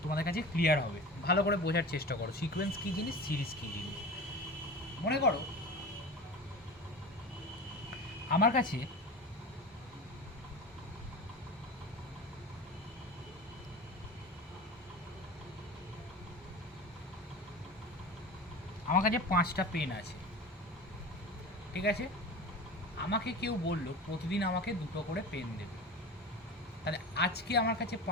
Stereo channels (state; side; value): normal; both; correlation 0.32